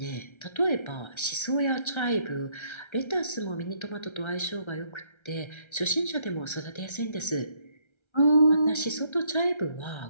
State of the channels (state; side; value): late; right; 1.3 ms